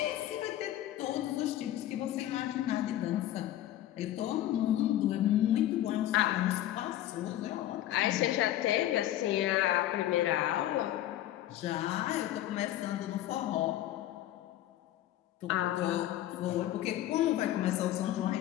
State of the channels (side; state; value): right; quieter; 13.4 dB